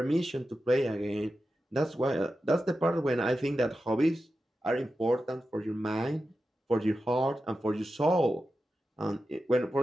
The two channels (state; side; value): normal; both; correlation 0.91